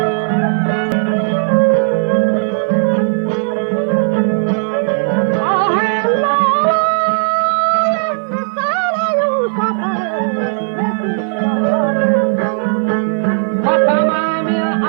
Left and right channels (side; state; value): left; silent; digital silence